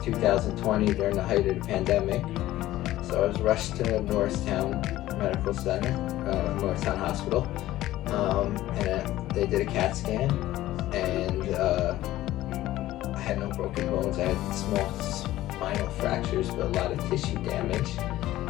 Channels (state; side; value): quieter; right; 15.3 dB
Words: 2020, during the height of the pandemic. So I was rushed to Norristown Medical Center, Norristown Hospital, and they did a CAT scan, and I had no broken bones. I had small spinal fractures, but a lot of tissue damage,